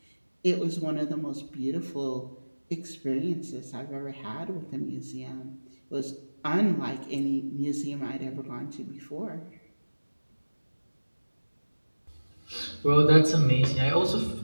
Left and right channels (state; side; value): inverted; both; correlation -1.00